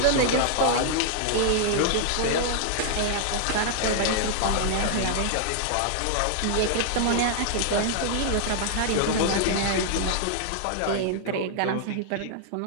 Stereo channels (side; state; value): both; different; correlation -0.01